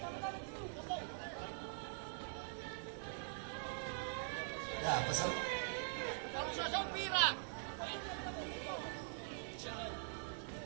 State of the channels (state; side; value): silent; left; digital silence